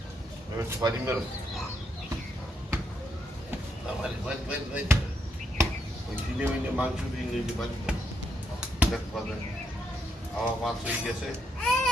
পারি মেরো ওই কিনে মিনে মাংস দিয়ে নিয়ে পারি দেখ পাবেন আমার মাছ হয়ে গেছে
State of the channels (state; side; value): normal; both; correlation 0.77